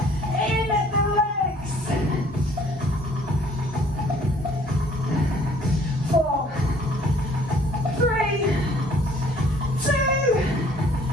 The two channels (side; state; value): both; normal; correlation 0.58